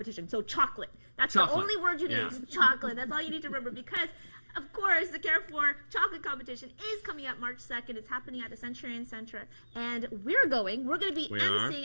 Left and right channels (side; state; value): both; inverted; correlation -1.00